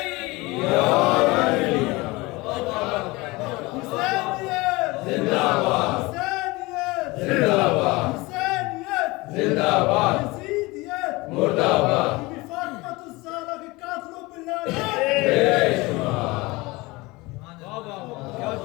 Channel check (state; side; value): quieter; right; 22.7 dB